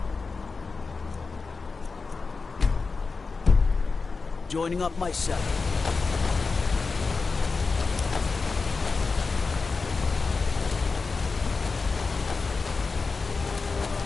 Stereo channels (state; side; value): quieter; right; 4.3 dB